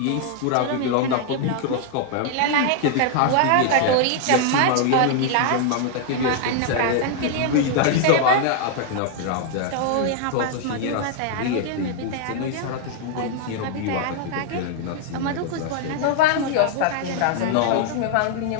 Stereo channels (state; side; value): different; both; correlation 0.00